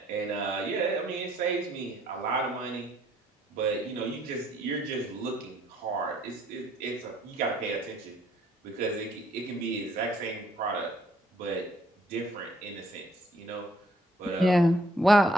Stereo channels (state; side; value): normal; both; correlation 0.65